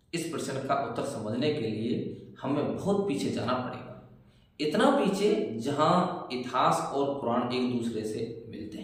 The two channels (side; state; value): both; identical; correlation 1.00